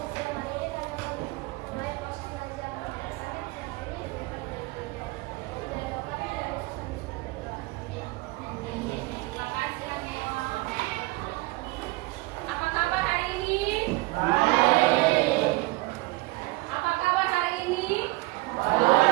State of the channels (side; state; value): left; quieter; 22.5 dB